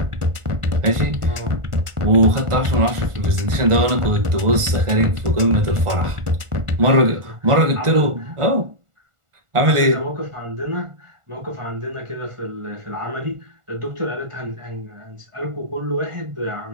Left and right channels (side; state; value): left; late; 1.4 ms